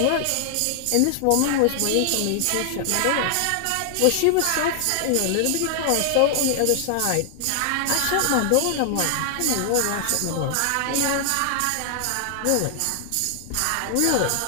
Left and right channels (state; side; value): different; both; correlation 0.00